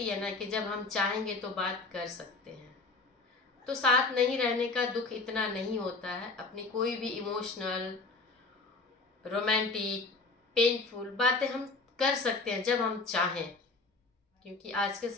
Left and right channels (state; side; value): quieter; right; 3.8 dB